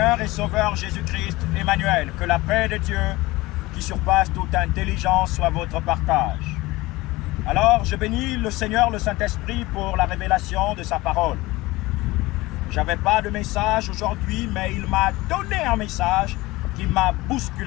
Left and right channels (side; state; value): right; quieter; 20.2 dB